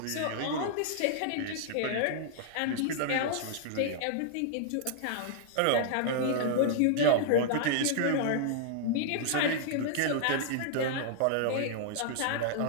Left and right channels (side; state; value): both; different; correlation -0.01